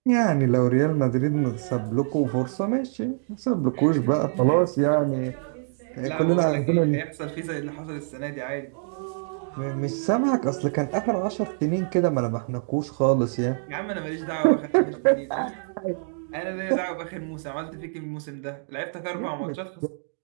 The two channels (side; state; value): left; silent; digital silence